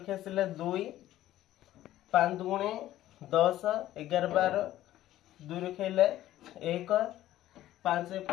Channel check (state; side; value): quieter; right; 13.9 dB